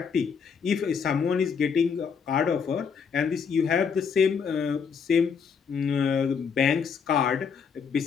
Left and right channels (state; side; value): quieter; right; 6.3 dB